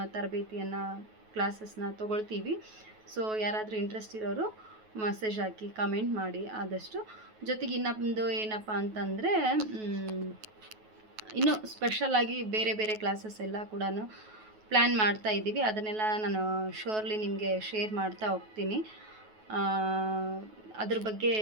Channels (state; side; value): late; left; 9.3 ms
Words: ತರಬೇತಿಯನ್ನು ಕ್ಲಾಸಸ್ನ ತೊಗೊಳ್ತೀವಿ. ಸೊ ಯಾರಾದರೂ ಇಂಟ್ರೆಸ್ಟ್ ಇರೋರು ಮೆಸೇಜ್ ಹಾಕಿ ಕಮೆಂಟ್ ಮಾಡಿ ಆದಷ್ಟು. ಜೊತೆಗೆ ಇನ್ನೊಂದು ಏನಪ್ಪ ಅಂತಂದರೆ, ಇನ್ನೂ ಸ್ಪೆಷಲಾಗಿ ಬೇರೆ ಬೇರೆ ಕ್ಲಾಸಸ್ ಎಲ್ಲ ಕೂಡ ಪ್ಲ್ಯಾನ್ ಮಾಡ್ತಾ ಇದ್ದೀವಿ. ಅದನ್ನೆಲ್ಲ ನಾನು ಶೋರ್ಲಿ ನಿಮಗೆ ಶೇರ್ ಮಾಡ್ತಾ ಹೋಗ್ತೀನಿ. ಅದ್ರ ಬಗ್ಗೆ